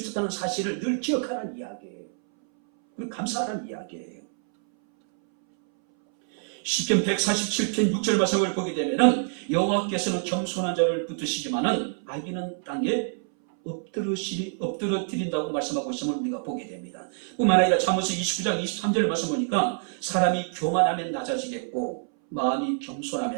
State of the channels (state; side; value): silent; left; 61 dB below the other